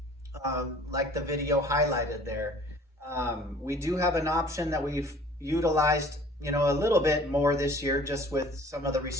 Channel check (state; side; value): normal; both; correlation 0.50